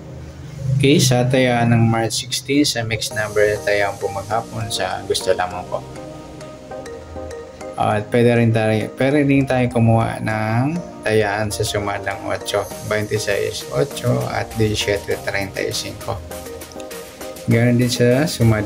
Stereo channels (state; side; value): identical; both; correlation 1.00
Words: Okay, sa tayaan ng March 16 sa mixed number, tayaan po maghapon sa gusto lamang po. At pwede rin tayo kumuha ng tayaan sa sumadang 8, 26, 8 at 17, 35. Ganoon din sa